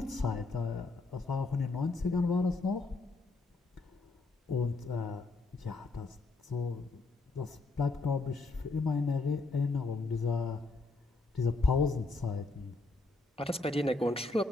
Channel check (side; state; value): right; quieter; 3.6 dB